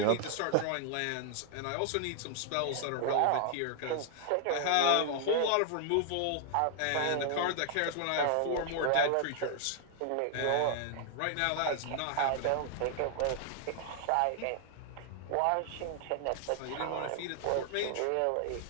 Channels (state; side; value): different; both; correlation 0.00